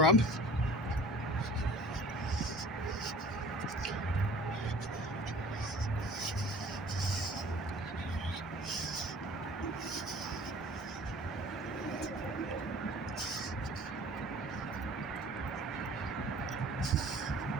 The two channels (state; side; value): normal; both; correlation 0.46